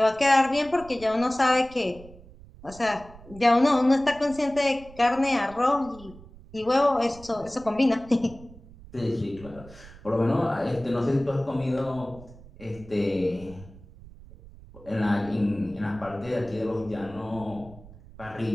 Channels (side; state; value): right; noise; rumble, 20 dB below the sound